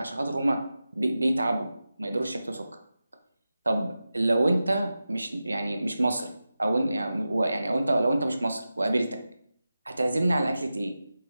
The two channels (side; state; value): both; inverted; correlation -0.93